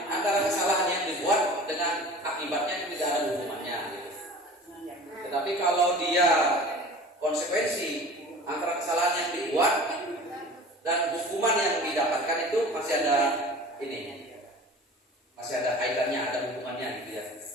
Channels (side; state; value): both; normal; correlation 0.41